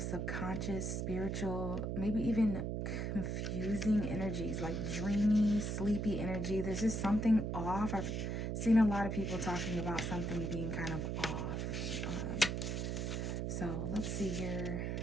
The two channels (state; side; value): noise; right; hum, 1 dB below the sound